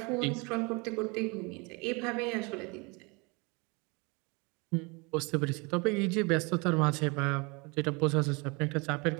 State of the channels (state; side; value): quieter; left; 28.9 dB